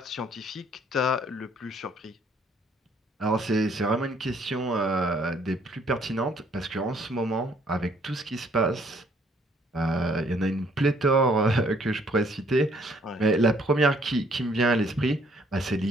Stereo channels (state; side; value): normal; both; correlation 0.64